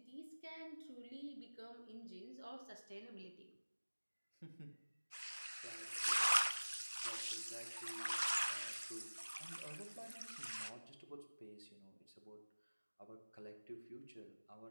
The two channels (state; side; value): inverted; both; correlation -1.00